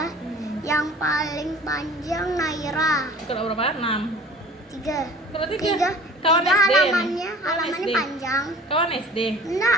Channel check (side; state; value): both; normal; correlation 0.45